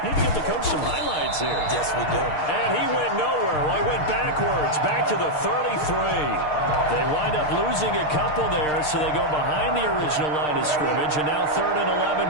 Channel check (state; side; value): late; right; 6.6 ms